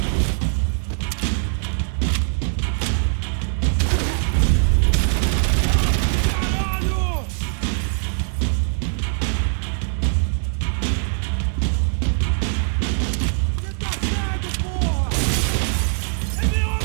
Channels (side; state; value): left; silent; 64 dB below the other